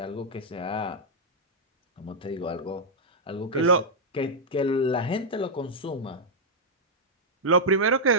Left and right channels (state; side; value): normal; both; correlation -0.04